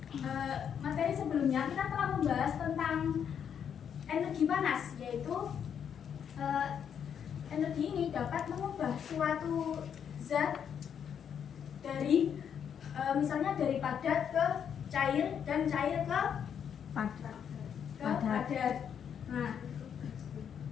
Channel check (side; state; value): right; quieter; 8.1 dB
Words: sebelumnya kita telah membahas tentang energi panas, yaitu energi ini dapat mengubah suatu zat dari misalnya dari padat ke cair dan cair ke padat. Nah,